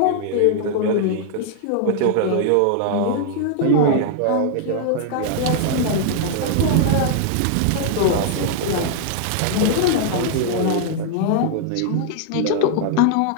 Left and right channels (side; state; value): both; different; correlation 0.00